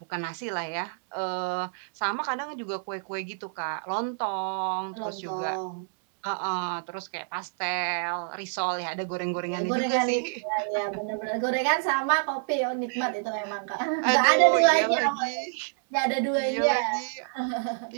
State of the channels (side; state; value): left; silent; digital silence